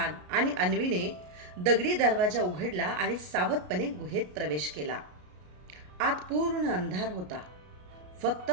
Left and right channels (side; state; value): left; late; 33 ms